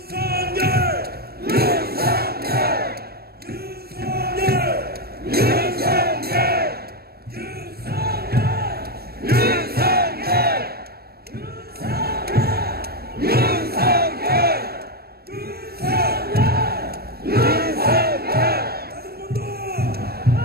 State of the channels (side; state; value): left; late; 0.45 ms